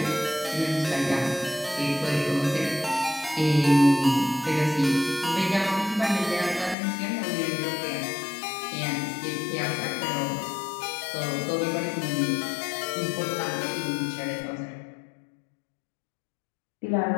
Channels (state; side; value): drops out; right; at 6.8 s